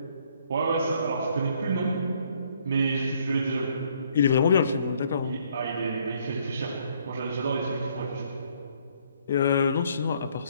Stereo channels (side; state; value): both; inverted; correlation -0.66